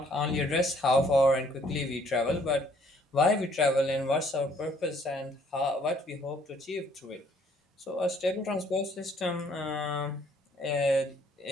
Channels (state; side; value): normal; both; correlation 0.63